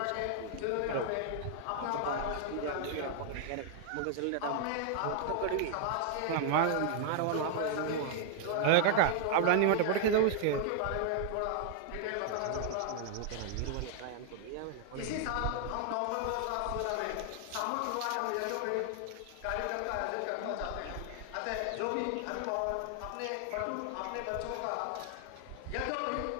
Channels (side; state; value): both; different; correlation 0.00